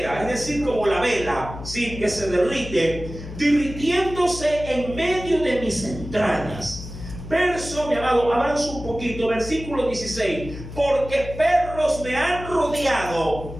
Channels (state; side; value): noise; left; hum, 11 dB below the sound